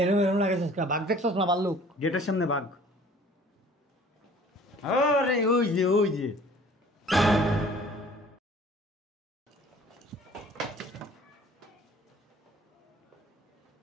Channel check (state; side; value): normal; both; correlation 0.51